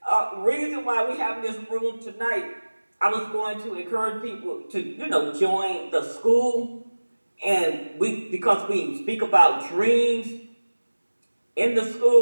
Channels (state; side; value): inverted; both; correlation -1.00